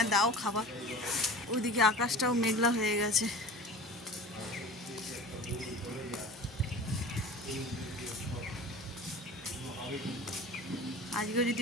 দাও খাবার। ওইদিকে আকাশটাও মেঘলা হয়ে গেছে। আজকেও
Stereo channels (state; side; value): normal; both; correlation 0.38